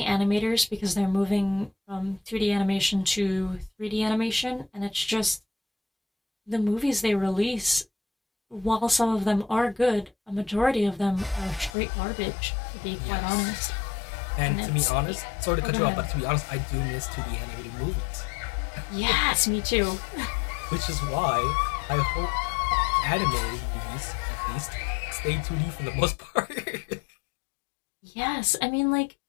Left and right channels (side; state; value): right; drops out; at 11.8 s